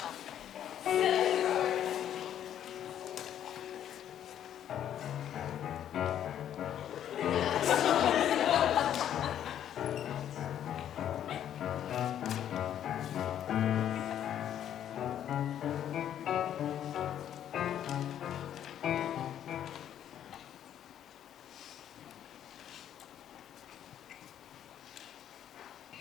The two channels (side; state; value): right; quieter; 10.4 dB